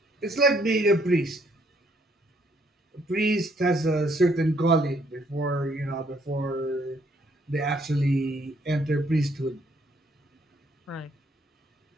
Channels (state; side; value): normal; both; correlation 0.68